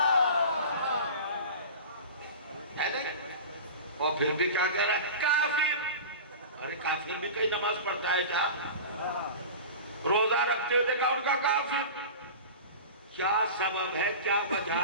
اور پھر بھی کیا کہہ رہا ہے؟ کافر۔ ارے کافر بھی کئی نماز پڑھتا ہے کیا؟ روزہ رکھتے ہوئے دیکھا ان کا کافر۔ کیا سبب ہے، کیا وجہ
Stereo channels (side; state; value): both; inverted; correlation -0.33